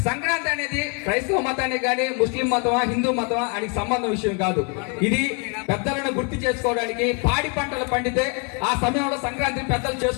సంక్రాంతి అనేది క్రైస్తవ మతానికి కానీ ముస్లిం మతమా హిందూ మతమా అని సంబంధం విషయం కాదు. ఇది పెద్దలను గుర్తు చేసుకోవడానికి, పాడి పంటలు పండితే ఆ సమయంలో సంక్రాంతి పెద్దలు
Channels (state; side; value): quieter; right; 35.3 dB